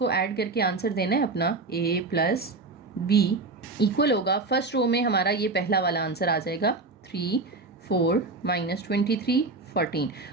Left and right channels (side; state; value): left; quieter; 3.6 dB